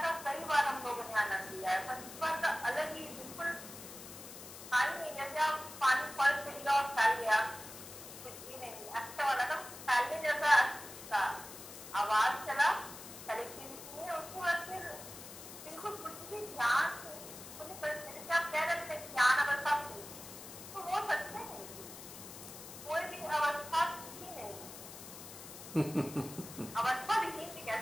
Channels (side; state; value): left; noise; hiss, 13 dB below the sound